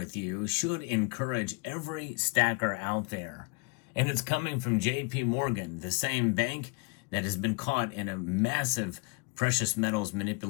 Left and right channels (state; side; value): quieter; right; 32.9 dB